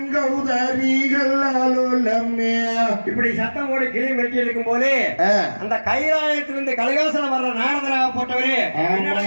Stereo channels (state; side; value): inverted; both; correlation -1.00